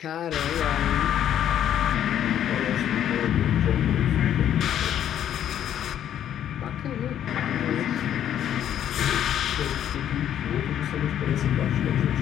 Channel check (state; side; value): quieter; right; 10.4 dB